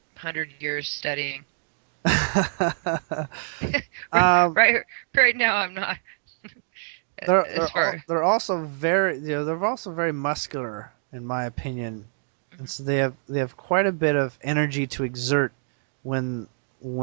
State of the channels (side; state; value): left; silent; digital silence